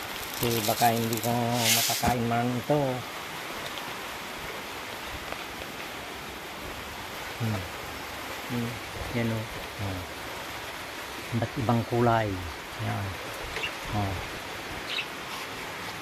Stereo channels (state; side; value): identical; both; correlation 1.00